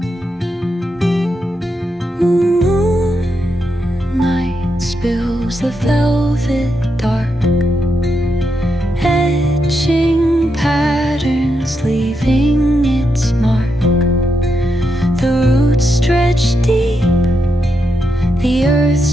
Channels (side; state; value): both; normal; correlation 0.83